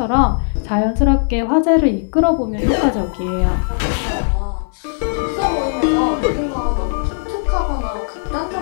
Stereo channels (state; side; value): silent; right; digital silence